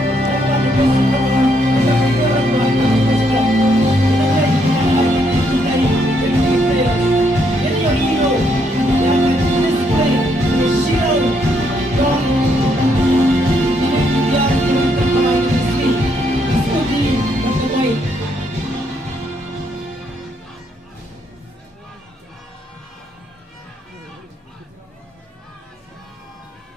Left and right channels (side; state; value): both; normal; correlation 0.74